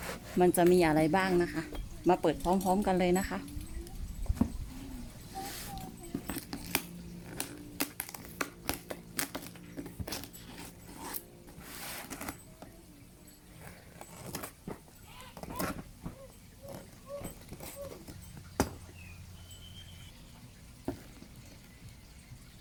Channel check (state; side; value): identical; both; correlation 1.00